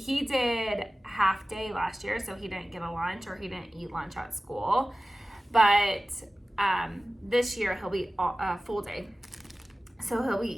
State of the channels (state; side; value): normal; both; correlation 0.96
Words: did half day last year, so he didn't get a lunch, or he didn't eat lunch at school. But this year he'll be a full day. So he'll